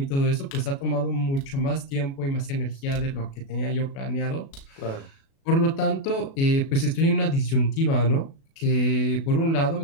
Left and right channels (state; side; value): late; right; 36 ms